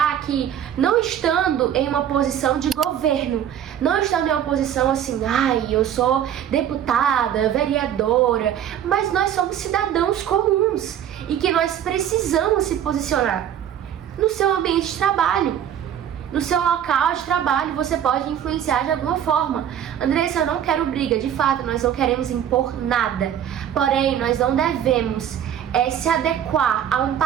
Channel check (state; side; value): quieter; left; 9.8 dB